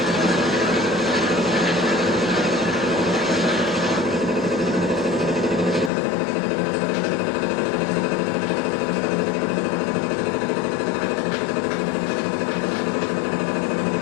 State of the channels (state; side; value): drops out; right; at 5.9 s